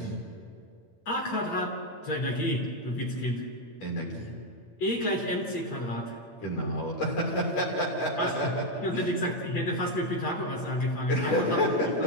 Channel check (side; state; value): right; late; 8.9 ms